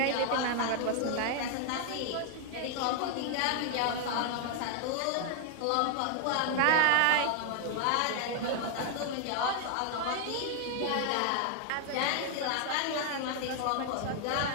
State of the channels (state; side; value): different; both; correlation 0.00